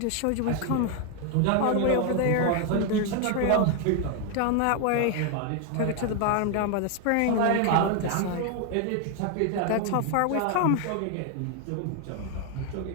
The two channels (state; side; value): different; both; correlation 0.01